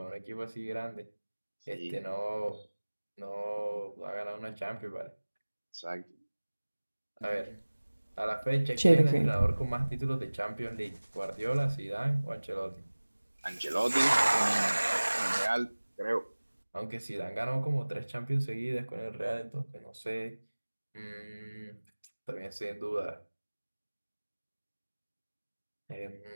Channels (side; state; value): both; inverted; correlation -1.00